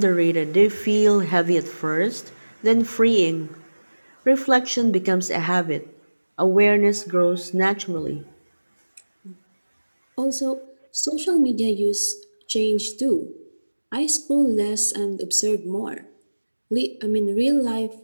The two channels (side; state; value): both; inverted; correlation -1.00